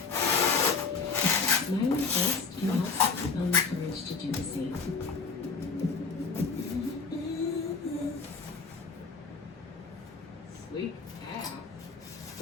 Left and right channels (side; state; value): right; quieter; 4.6 dB